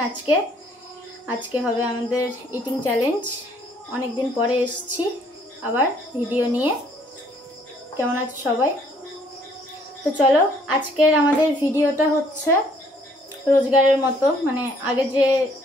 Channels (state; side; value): normal; both; correlation 0.63